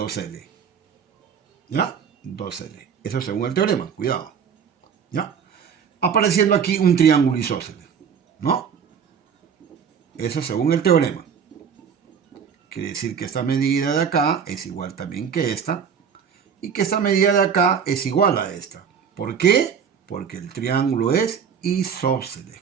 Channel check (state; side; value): quieter; left; 7.1 dB